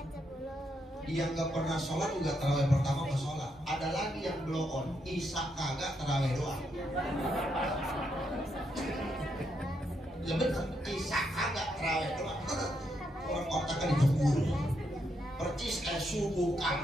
Yang nggak pernah sholat juga tarawih pertama ke sholat. Ada lagi yang blow on, isya kagak tarawih doang. Ya bener, isya kagak tarawih doang. Orang otaknya dijemur. Percis kayak subuh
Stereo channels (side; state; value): both; normal; correlation 0.79